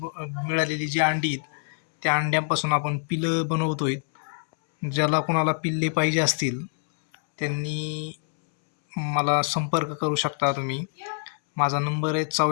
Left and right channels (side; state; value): right; silent; 61 dB below the other